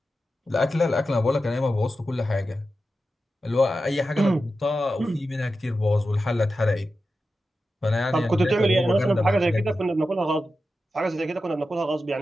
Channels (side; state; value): both; normal; correlation 0.91